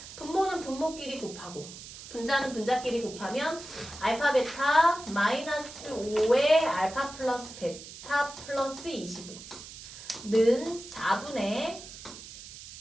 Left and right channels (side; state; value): right; noise; hiss, 14 dB below the sound